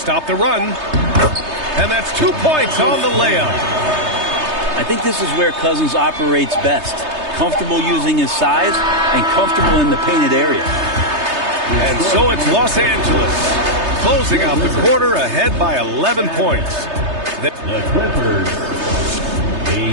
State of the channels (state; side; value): late; left; 3.3 ms